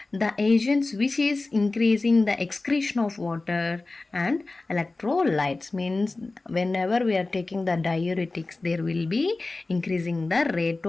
the agents which is increasing the excretion of water and electrolytes. Means whenever we are taking the diuretics there will be increasing the rate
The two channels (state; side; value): quieter; right; 3.3 dB